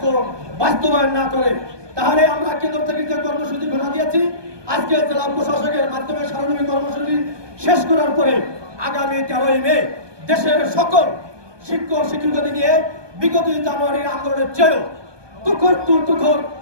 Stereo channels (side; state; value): left; late; 1.2 ms